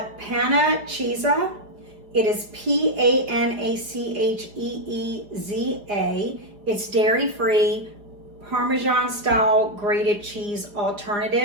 Panna Cheeza. It is P-A-N-A-C-H-E-E-Z-A. It's dairy-free, Parmesan-style grated cheese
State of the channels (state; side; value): late; left; 4.9 ms